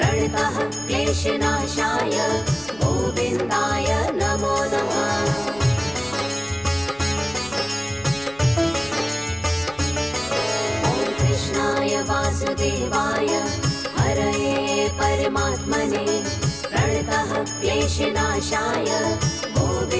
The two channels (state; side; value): noise; right; rumble, 24 dB below the sound